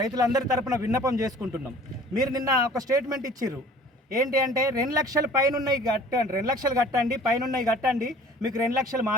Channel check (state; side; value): normal; both; correlation 0.49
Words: తరపున విన్నపం చేసుకుంటున్నాం. మీరు నిన్న ఒక స్టేట్మెంట్ ఇచ్చిర్రు, ఏంటి అంటే 2 లక్షల పైన ఉన్నాయి కట్టండి, 2 లక్షలు కట్టండి, పైన ఉన్నాయి కట్టండి, మీకు 2 లక్షలు